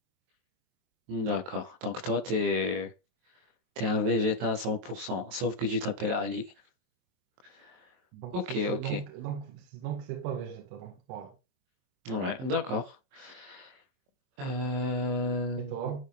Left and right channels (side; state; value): left; late; 23 ms